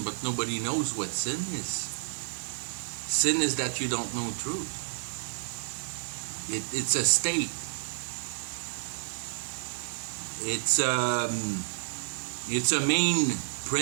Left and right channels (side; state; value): left; silent; digital silence